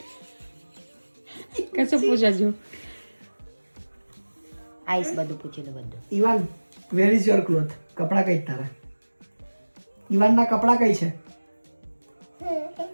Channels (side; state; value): both; inverted; correlation -1.00